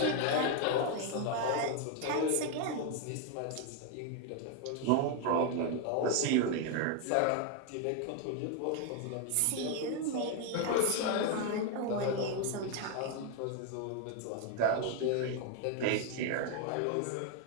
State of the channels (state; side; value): different; both; correlation 0.01